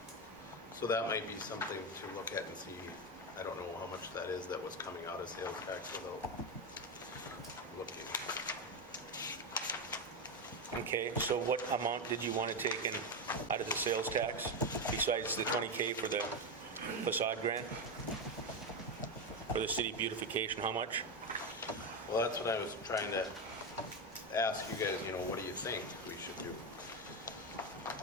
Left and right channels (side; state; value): both; normal; correlation 0.11